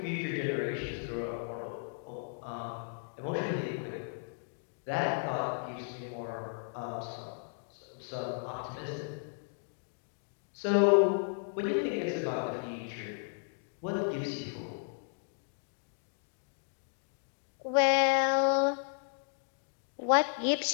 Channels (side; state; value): right; silent; digital silence